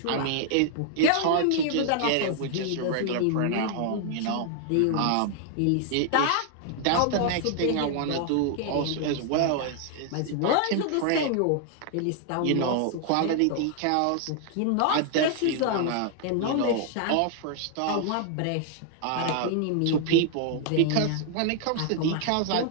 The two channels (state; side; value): different; both; correlation 0.00